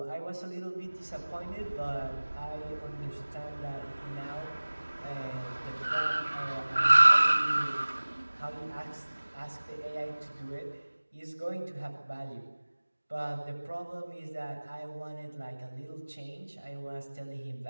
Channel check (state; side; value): inverted; both; correlation -1.00